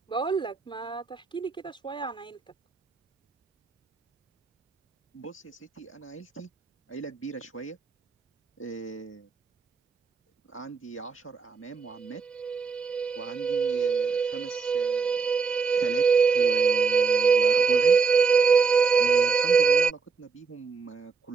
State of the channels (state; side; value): quieter; left; 5.3 dB